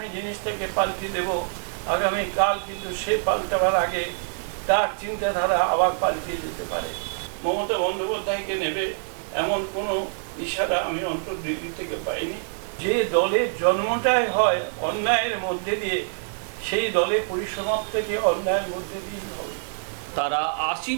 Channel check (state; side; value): silent; left; digital silence